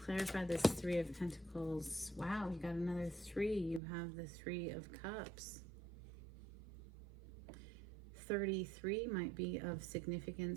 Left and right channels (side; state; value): left; drops out; at 3.8 s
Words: this Three of Pentacles. Wow, you got another 3. You have the Three of Cups. 33 might be of